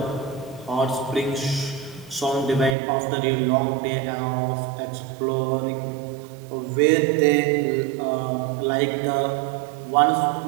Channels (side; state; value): left; drops out; at 2.8 s